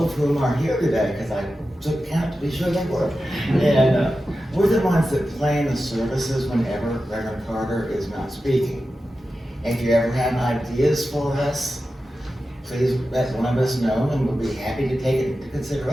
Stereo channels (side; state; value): both; normal; correlation 0.92